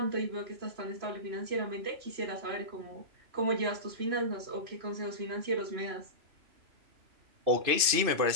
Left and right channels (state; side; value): late; left; 2.6 ms